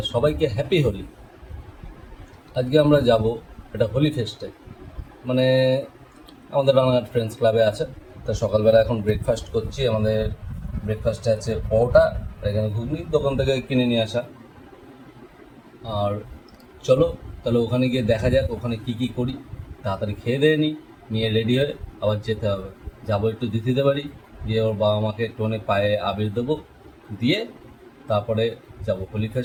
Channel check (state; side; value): identical; both; correlation 1.00